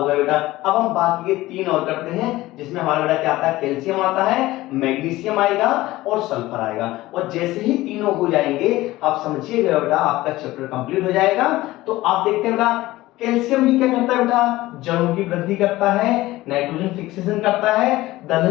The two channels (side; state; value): right; quieter; 17.7 dB